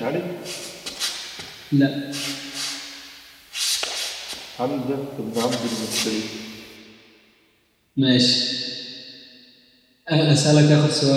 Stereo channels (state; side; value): identical; both; correlation 1.00